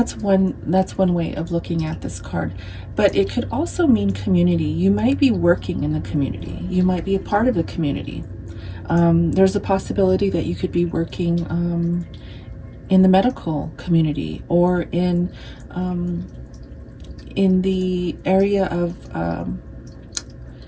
one way of looking at this card. But it could also mean community. You might be working in the community. You might be a part of the community. There's a possibility that you could be working in the medical community, or in the area of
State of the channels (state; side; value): identical; both; correlation 1.00